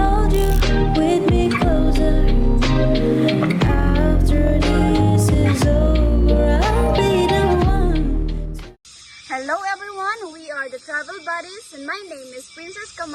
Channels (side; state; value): both; identical; correlation 1.00